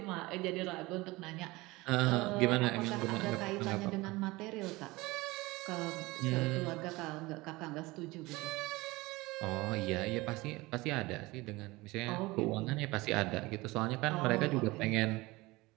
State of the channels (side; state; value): left; quieter; 21.4 dB